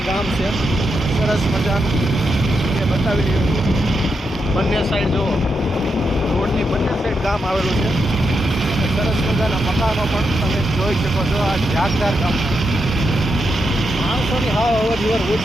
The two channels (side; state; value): both; normal; correlation 0.84